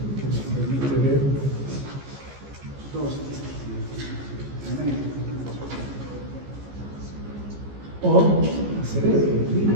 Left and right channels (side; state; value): left; late; 15 ms